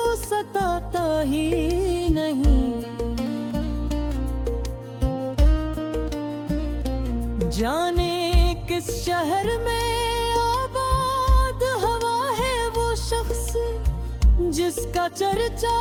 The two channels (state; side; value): identical; both; correlation 1.00